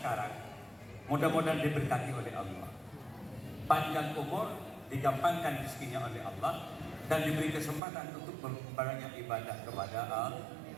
mudah-mudahan diberkati oleh Allah. Panjang umur, digampangkan rezekinya oleh Allah, dan diberi kesempatan untuk berbanyak ibadah kepada Allah.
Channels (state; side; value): drops out; left; at 7.8 s